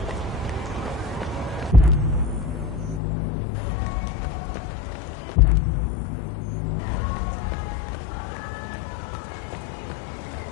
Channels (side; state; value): right; drops out; at 3.0 s